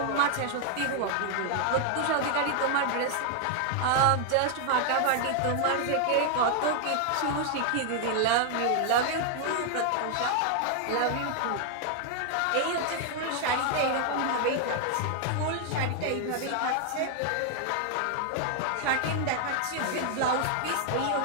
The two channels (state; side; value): different; both; correlation 0.00